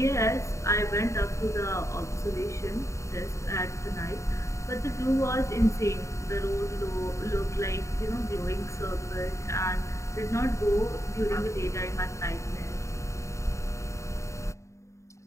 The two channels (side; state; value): right; late; 0.14 ms